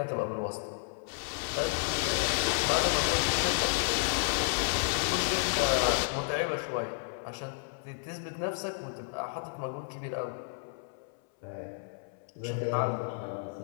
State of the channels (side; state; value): right; silent; 57 dB below the other